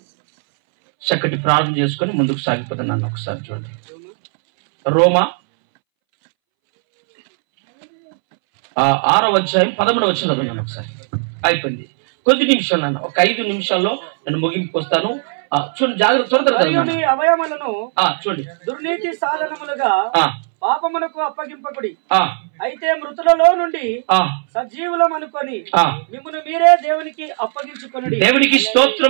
చక్కటి ప్రార్థన చేసుకొని ముందుకు సాగిపోతున్నాను. ఒకసారి చూడండి, రోమా 6వ అధ్యాయం 11వ వచనం చదువుతున్నాను ఒకసారి. అయిపోయింది, కొద్ది నిమిషాలు అన్న, ఒక 5 నిమిషాల్లో నేను ముగింపుకు వస్తాను. చూడండి, జాగ్రత్త, త్వరగా అవయములను చూడండి. దుర్నీతి సాధనములుగా పాపమునకు అప్పగింపకుడి, అయితే మృతులలో నుండి సజీవులం అనుకొని మిమ్మును మీరే దేవునికి అప్పగించుకొనుడి. దేవునికి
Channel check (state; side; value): silent; left; 67 dB below the other